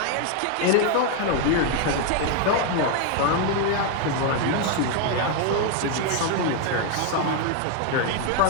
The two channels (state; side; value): different; both; correlation 0.01